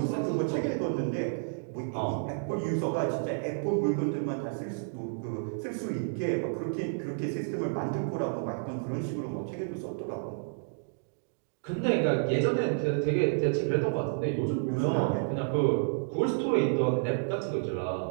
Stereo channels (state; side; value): silent; left; digital silence